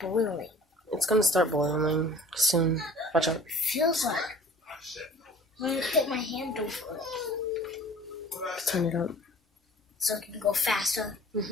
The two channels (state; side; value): normal; both; correlation 0.47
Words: boiling. It's gonna start boiling soon. Watch out. It feels like. I'm gonna put my hand over it. Turn it up. So it can go faster.